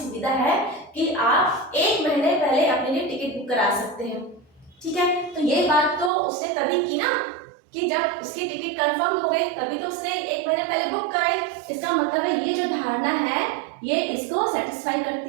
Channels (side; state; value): left; drops out; at 6.1 s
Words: है कि आप 1 महीने पहले अपने लिए टिकट बुक करा सकते हैं, ठीक है। तो ये बात तो उसने तभी की ना कि जब उसकी टिकट कंफर्म हो गई, तभी तो उसने 1 महीने पहले बुक कराई। इसका मतलब है ये जो धारणा है ये इसको सेटिस्फाई